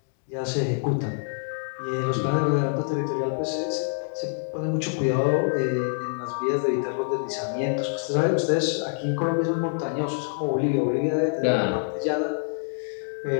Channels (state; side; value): silent; right; digital silence